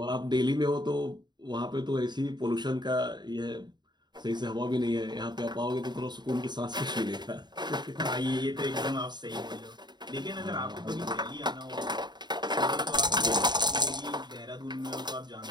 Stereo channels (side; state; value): left; late; 0.21 ms